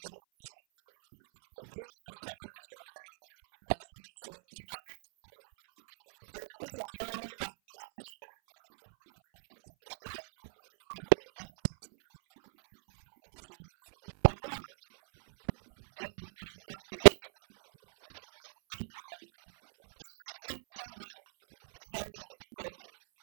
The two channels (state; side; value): silent; left; 55 dB below the other